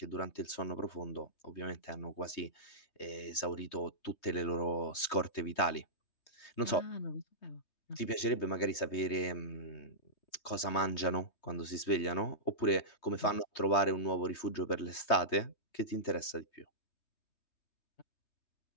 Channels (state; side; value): late; right; 3.2 ms